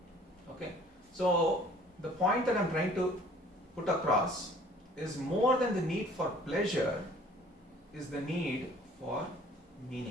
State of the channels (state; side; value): normal; both; correlation 0.53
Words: Okay? So the point that I'm trying to put across is more than the need for pleasure is the need for